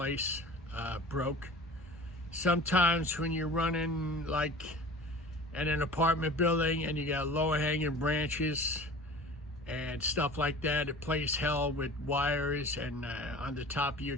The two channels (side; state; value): both; normal; correlation 0.41